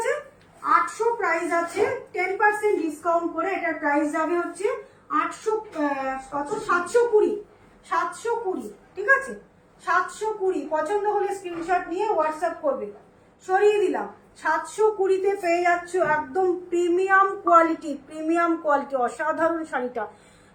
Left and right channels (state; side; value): identical; both; correlation 1.00